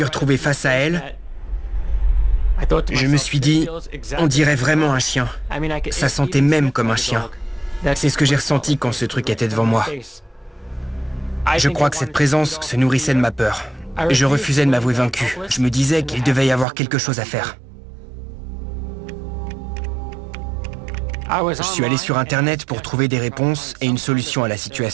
retrouvé face à elle, je me suis dit, on dirait vraiment un chien. Ça sentait même comme un chien. C'est ce que j'ai ressenti quand ce truc était devant moi. Je crois que cette présence se nourrissait de ma peur. Je refusais de m'avouer vaincu. Je me disais qu'il devait y avoir quelque chose à faire. Je suis allé sur Internet pour trouver des réponses et une solution à la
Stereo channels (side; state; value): left; drops out; at 16.7 s